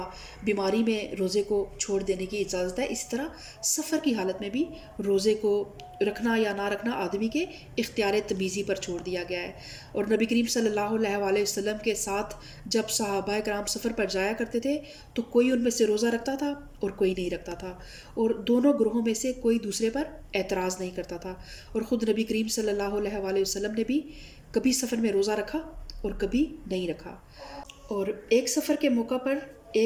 بیماری میں روزے کو چھوڑ دینے کی اجازت ہے، اسی طرح سفر کی حالت میں بھی روزے کو رکھنا یا نہ رکھنا آدمی کے اختیار تمیزی پر چھوڑ دیا گیا ہے۔ اور نبی کریم صلی اللہ علیہ وآلہ وسلم کے ساتھ جب صحابہ کرام سفر پر جایا کرتے تھے تو کوئی ان میں سے روزہ رکھتا تھا اور کوئی نہیں رکھتا تھا، اور دونوں گروہوں میں سے کوئی دوسرے پر اعتراض نہیں کرتا تھا۔ اور خود نبی کریم صلی اللہ علیہ وآلہ وسلم نے بھی کبھی سفر میں روزہ رکھا اور کبھی نہیں رکھا۔ اور ایک سفر کے موقع پر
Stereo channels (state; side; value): identical; both; correlation 1.00